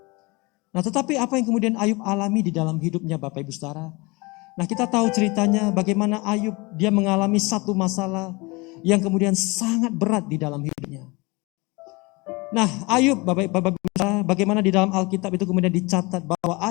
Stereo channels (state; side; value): quieter; right; 25.5 dB